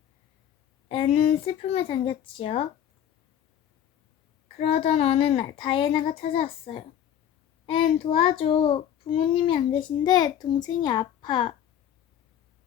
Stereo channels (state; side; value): quieter; right; 10.1 dB